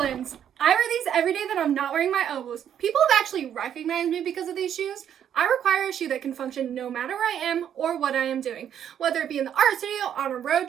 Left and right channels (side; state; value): left; quieter; 9.5 dB